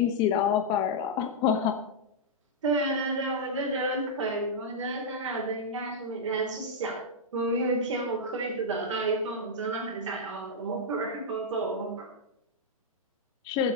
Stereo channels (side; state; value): both; normal; correlation -0.06